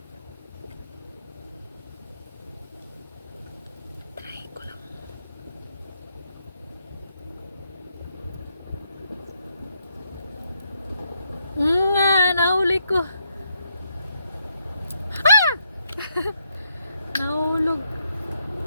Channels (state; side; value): inverted; both; correlation -0.77